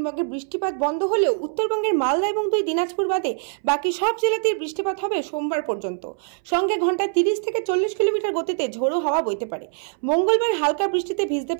বৃষ্টিপাত বন্ধ হলেও উত্তরবঙ্গের মালদা এবং 2 দিনাজপুর বাদে বাকি সব জেলাতেই বৃষ্টিপাত হবে সোমবার পর্যন্ত। সঙ্গে ঘন্টায় 30 থেকে 40 কিলোমিটার গতিতে ঝোড়ো হাওয়া বইতে পারে। মঙ্গলবার হালকা বৃষ্টিতে ভিজতে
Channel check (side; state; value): left; silent; 62 dB below the other